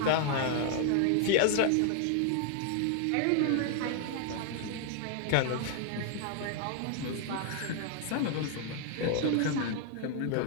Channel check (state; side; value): different; both; correlation 0.00